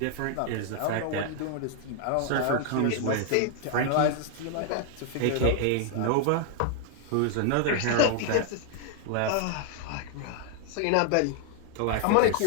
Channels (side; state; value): both; different; correlation 0.00